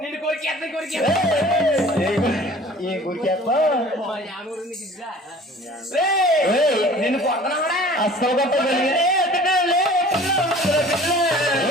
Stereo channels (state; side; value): normal; both; correlation 0.47